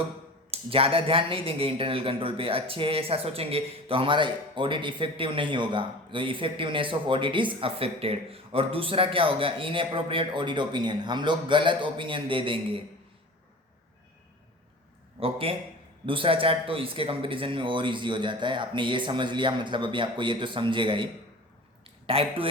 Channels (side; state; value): both; normal; correlation 0.38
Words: ज़्यादा ध्यान नहीं देंगे इंटरनल कंट्रोल पे, अच्छे है ऐसा सोचेंगे, तो हमारा ऑडिट इफेक्टिव नहीं होगा। तो effectiveness of audit is affected. और दूसरा क्या होगा, इनअप्रोप्रिएट ऑडिट ओपिनियन, हम लोग गलत ओपिनियन दे देंगे। ओके, दूसरा चार्ट तो इसके कंपैरिजन में और इजी हो जाता है। आपने ये समझ लिया, मतलब अभी आपको ये तो समझेगा ही। टाइप 2